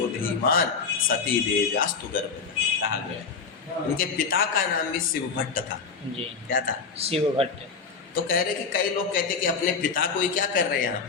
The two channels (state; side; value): quieter; right; 5.2 dB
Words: धीमान सती देव्यास्तु गर्भ कहा गया। इनके पिता का नाम भी शिव भट्ट था। क्या था? शिव भट्ट। तो कह रहे कि कई लोग कहते कि अपने पिता को ही क्या कर रहे हैं, यहाँ